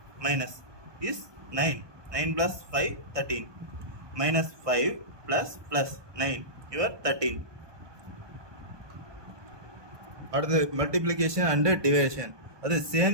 is 9. 9 plus 5 13. Minus 5 plus 9. You are 13. Or the multiplication and division. Or the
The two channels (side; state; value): left; late; 1.2 ms